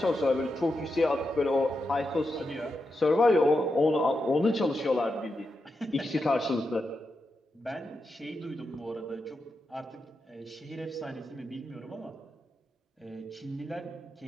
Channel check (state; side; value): normal; both; correlation 0.87